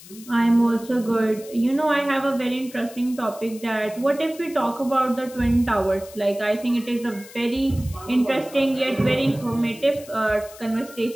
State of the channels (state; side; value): noise; left; hiss, 19 dB below the sound